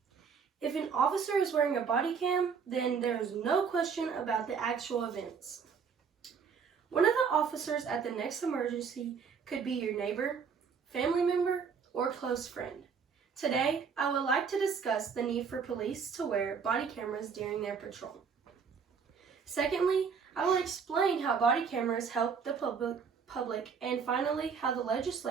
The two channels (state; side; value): quieter; left; 6.1 dB